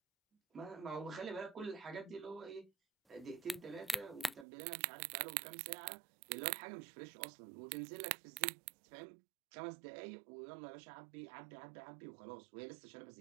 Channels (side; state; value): left; drops out; at 4.5 s